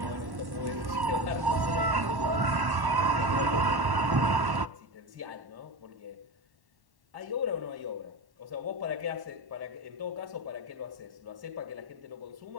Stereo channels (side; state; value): left; late; 1.1 ms